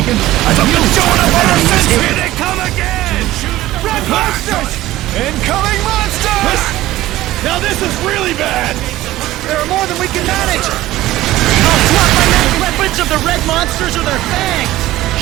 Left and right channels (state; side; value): quieter; left; 16.0 dB